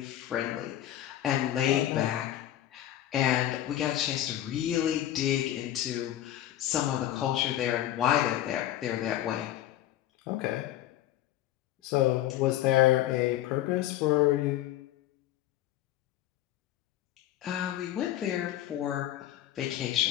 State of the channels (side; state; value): right; quieter; 13.0 dB